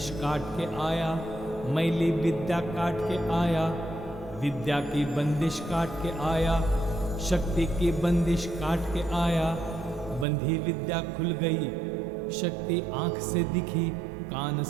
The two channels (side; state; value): left; drops out; at 10.2 s